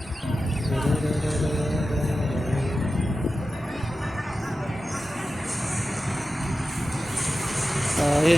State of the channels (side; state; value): both; normal; correlation 0.93